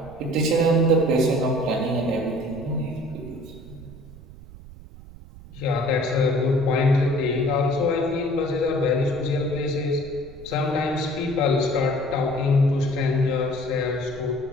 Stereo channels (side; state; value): right; noise; rumble, 18 dB below the sound